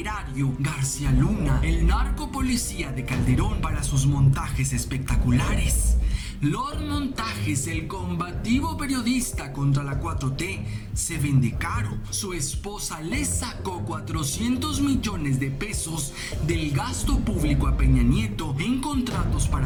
García Luna, el narco policía de Calderón, para sus montajes espectaculares? Los montajes, el combativo periodista contra la 4T se vende caro. Su esposa le sacó 400 millones de pesos del gasto público a Peña Nieto en contratos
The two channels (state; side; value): identical; both; correlation 1.00